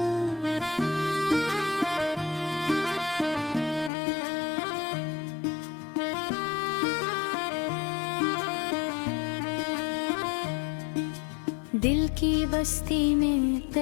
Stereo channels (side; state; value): right; drops out; at 3.9 s